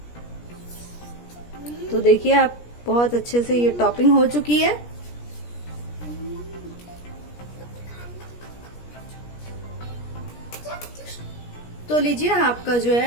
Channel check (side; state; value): right; late; 17 ms